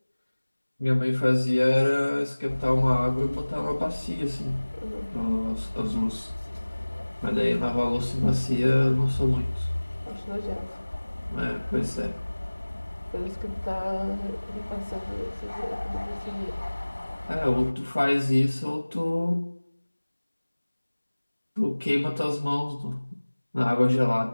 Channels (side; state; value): both; inverted; correlation -1.00